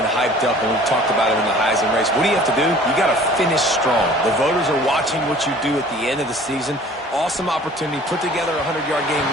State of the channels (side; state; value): both; normal; correlation 0.49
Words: hyped up, and we've talked about it in the Heisman race. What do you have to do? You got to finish strong. The voters are watching what you do at the end of the season. Awesome opportunity. Put together a 100-yard game